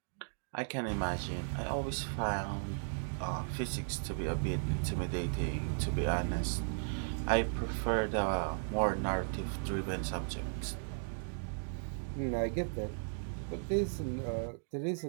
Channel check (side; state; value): left; silent; digital silence